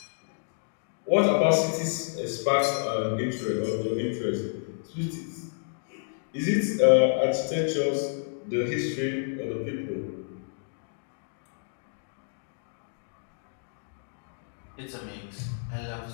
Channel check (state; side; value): silent; right; digital silence